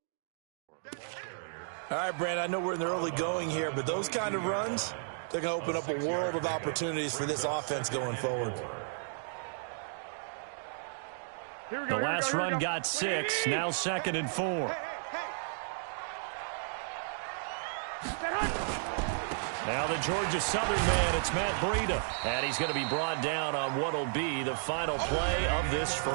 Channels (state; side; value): silent; left; digital silence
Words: All right, Brand, I know we're in the early going here, but those kind of runs, they're going to open up a world of opportunities for this offense going forward. The last run got 6, now 2nd and 4. Now the Georgia Southern man, it's Matt Breida. And he's going to be brought down on what will be the final play of this